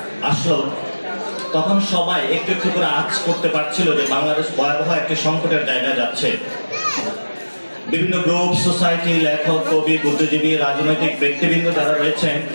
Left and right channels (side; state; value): both; inverted; correlation -1.00